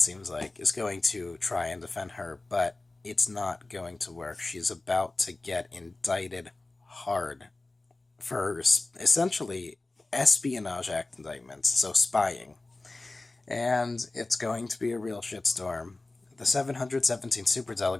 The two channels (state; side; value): quieter; right; 3.1 dB